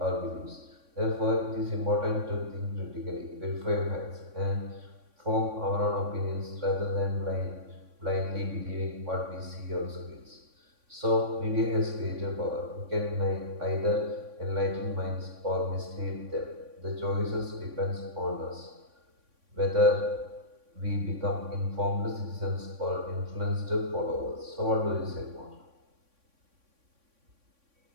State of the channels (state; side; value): late; left; 3.6 ms